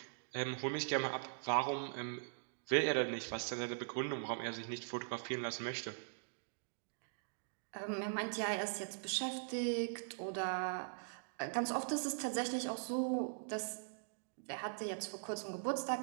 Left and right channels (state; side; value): silent; left; digital silence